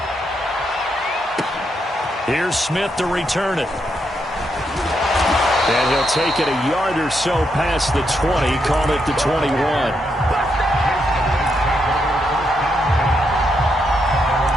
Here's Smith to return it. And he'll take it a yard or so past the 20, call it the 21.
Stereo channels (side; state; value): both; normal; correlation 0.80